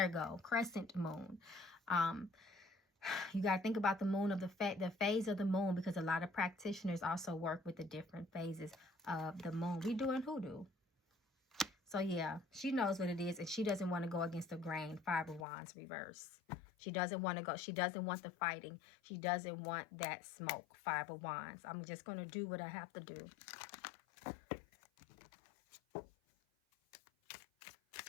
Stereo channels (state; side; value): drops out; right; at 15.5 s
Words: you go. Crescent moon. You got to think about the moon of the phase of the moon, because a lot of practitioners also work with the different phases of the moon. We doing hoodoo. So yeah, she knows what it is, and she doesn't want to go against the grain. 5 of Wands reverse. She doesn't want to go. She doesn't want the fighting. She doesn't want that smoke. 5 of Wands. I'm just going to do what I have to do.